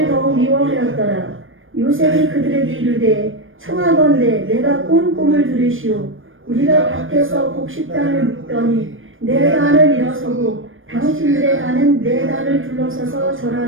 더욱 미워하였더라. 요셉이 그들에게 이르되 청하건대 내가 꾼 꿈을 들으시오. 우리가 밭에서 곡식단을 묶더니 내 단을 일어서고 당신들의 단은 내 단을 둘러서서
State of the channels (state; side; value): late; left; 0.59 ms